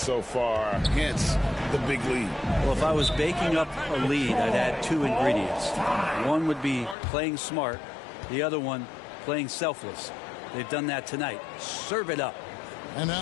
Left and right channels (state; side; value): drops out; right; at 7.0 s